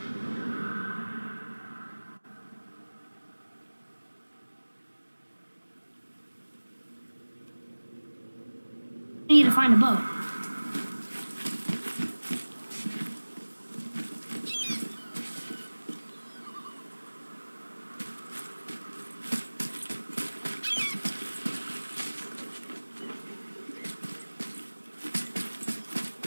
need to find a boat.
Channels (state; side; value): inverted; both; correlation -1.00